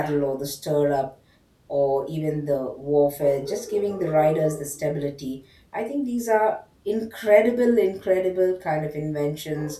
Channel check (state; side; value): identical; both; correlation 1.00